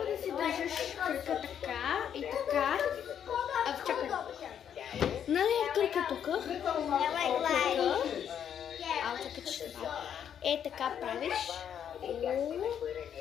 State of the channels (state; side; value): quieter; right; 8.9 dB